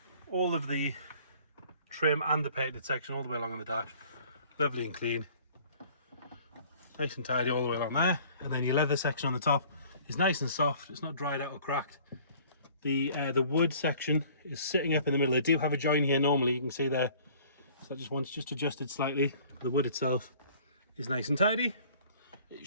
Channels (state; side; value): inverted; both; correlation -0.53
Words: All of the trim and the painted section all the way along on the dash, lovely and clean. Nice and tidy all the way along there. And then your leather section on the top is nice and soft. It's not dried out or cracked. The wood section is sitting up in the middle. They do have a join here normally, you can see there. So that just adjusted slightly. The wood itself is nice and tidy. It